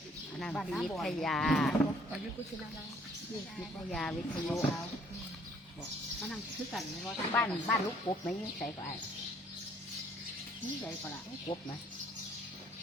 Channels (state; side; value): normal; both; correlation 0.61